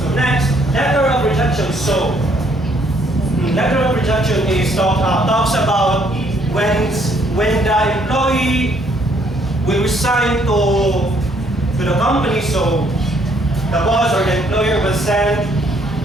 next, letter of rejection. So letter of rejection is talks about when the employee will resign to the company. So the boss or the employer will send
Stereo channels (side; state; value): both; normal; correlation 0.67